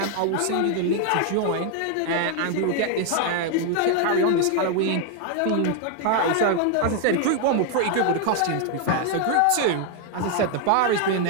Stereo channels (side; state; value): both; different; correlation 0.00